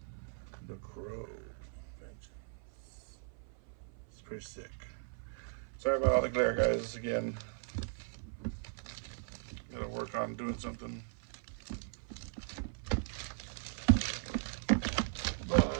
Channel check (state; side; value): silent; left; 52 dB below the other